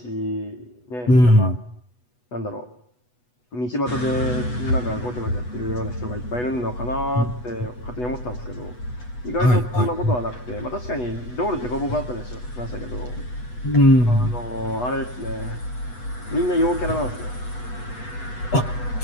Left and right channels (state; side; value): late; right; 8.1 ms